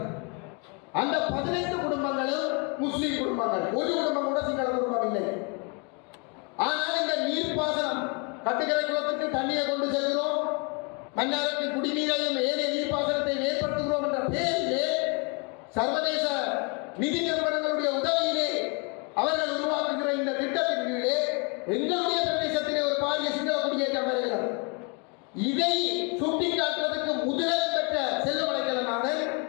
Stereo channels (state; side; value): quieter; right; 33.7 dB